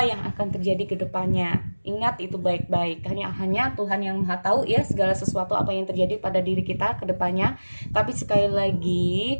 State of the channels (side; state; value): both; inverted; correlation -1.00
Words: yang akan terjadi ke depannya. Ingat itu baik-baik, hanya Tuhan yang Maha tahu ya segala sesuatu apa yang terjadi pada diri kita ke depannya. Tapi sekali lagi